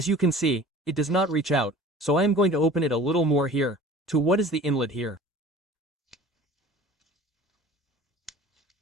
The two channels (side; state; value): both; normal; correlation 0.43